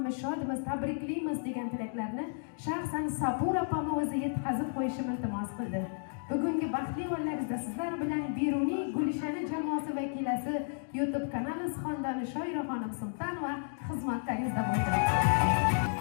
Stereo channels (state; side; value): silent; right; digital silence